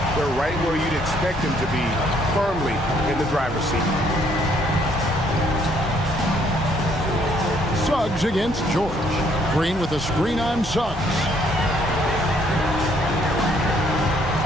they're right where you'd expect them to be, firmly in the driver's seat. Suggs against George. Green with a screen on Suggs.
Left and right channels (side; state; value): both; normal; correlation 0.66